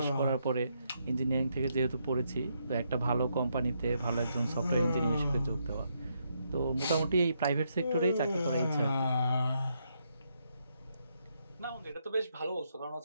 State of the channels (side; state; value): both; inverted; correlation -0.78